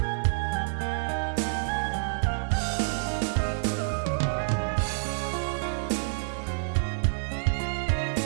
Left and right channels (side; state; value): left; silent; digital silence